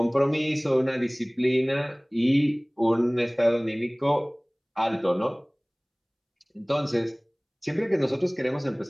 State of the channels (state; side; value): identical; both; correlation 1.00